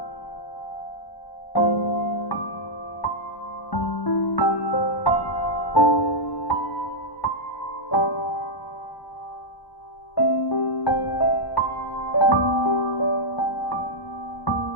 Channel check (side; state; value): right; late; 1.1 ms